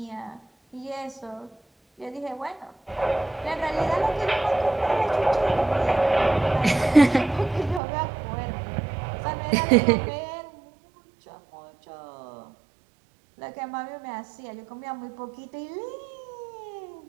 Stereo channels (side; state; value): left; drops out; at 7.8 s